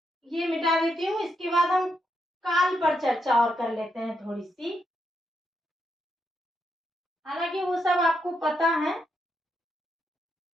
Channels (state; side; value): normal; both; correlation 0.81